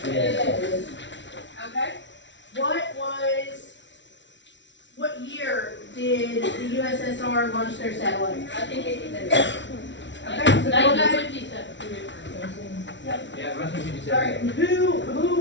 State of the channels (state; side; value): late; right; 0.53 ms